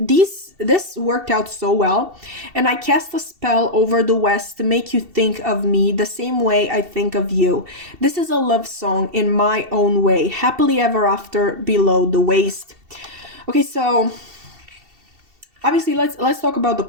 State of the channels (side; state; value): left; late; 2.7 ms